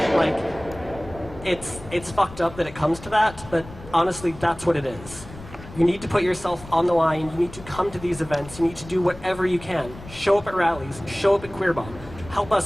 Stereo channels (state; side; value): noise; left; rumble, 16 dB below the sound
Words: it's fucked up that it comes to that, but honestly, that's what it is. You need to put yourself on the line. You need to come to these events. You need to do whatever you can. Show up at rallies. Show up at QueerBomb. Help